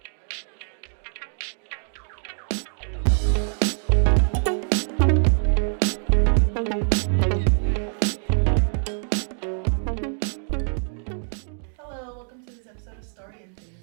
Hello, welcome to this episode of Story and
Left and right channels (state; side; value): silent; left; 62 dB below the other